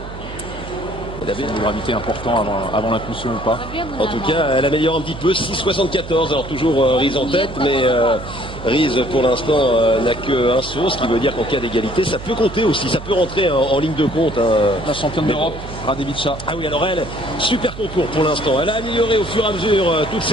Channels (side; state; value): right; noise; hum, 12 dB below the sound